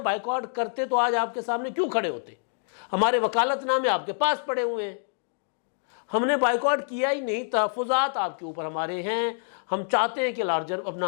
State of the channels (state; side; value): silent; right; digital silence